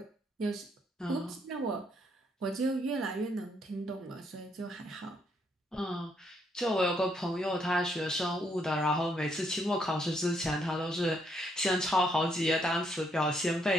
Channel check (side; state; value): both; normal; correlation 0.73